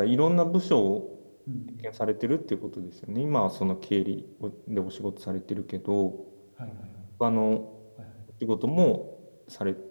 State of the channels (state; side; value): inverted; both; correlation -1.00